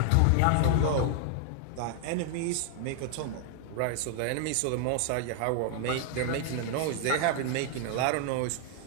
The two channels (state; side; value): different; both; correlation 0.00